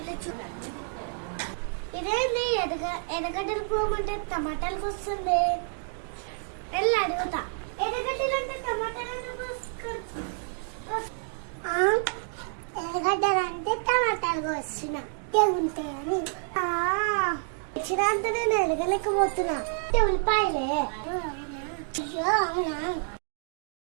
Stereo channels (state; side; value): silent; left; 55 dB below the other